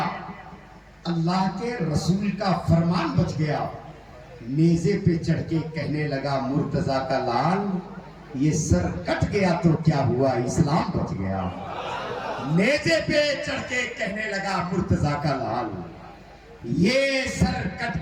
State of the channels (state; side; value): identical; both; correlation 1.00